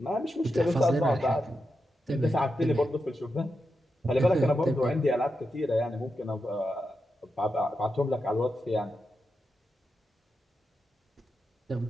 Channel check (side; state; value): both; normal; correlation 0.88